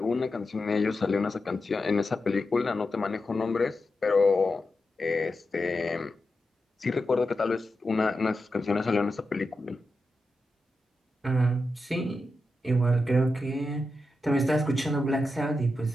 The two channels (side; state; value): both; normal; correlation 0.89